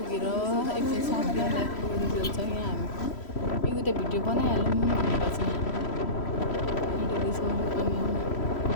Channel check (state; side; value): late; right; 3.1 ms